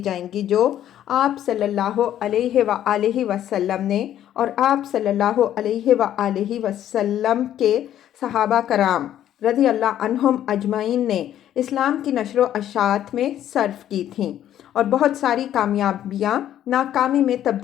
جائیں گی جو آپ صلی اللہ علیہ وآلہ وسلم نے اور آپ صلی اللہ علیہ وآلہ وسلم کے صحابہ کرام رضی اللہ عنہم اجمعین نے اسلام کی نشر و اشاعت میں صرف کی تھیں، اور بہت ساری کامیابیاں ناکامی میں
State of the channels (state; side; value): quieter; right; 11.4 dB